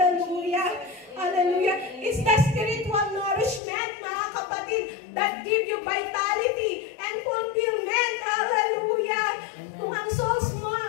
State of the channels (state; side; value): drops out; right; at 3.6 s